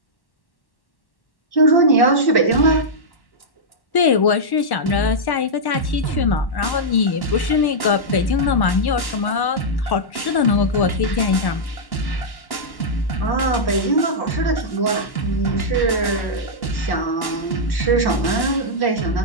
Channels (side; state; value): right; late; 1.1 ms